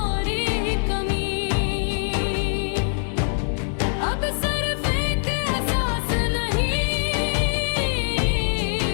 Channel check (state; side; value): silent; right; digital silence